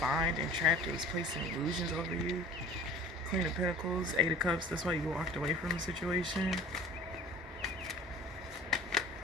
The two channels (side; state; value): both; normal; correlation 0.44